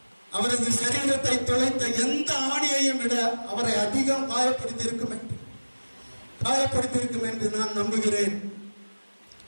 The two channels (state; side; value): inverted; both; correlation -1.00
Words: அவரது சரீரத்தை தொலைத்த எந்த ஆணியையும் விட அவரை அதிகம் காயப்படுத்தியிருக்கும் என்று நான் நம்புகிறேன்.